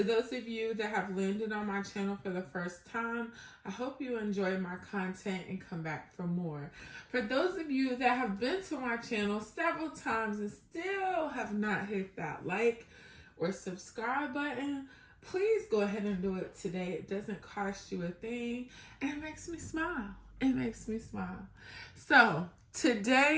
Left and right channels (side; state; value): both; identical; correlation 1.00